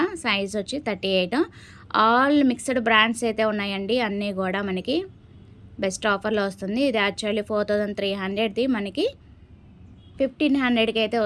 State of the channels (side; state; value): both; identical; correlation 1.00